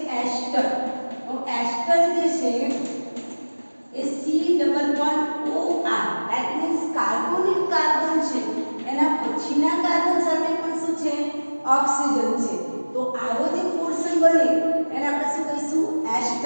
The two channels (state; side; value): inverted; both; correlation -1.00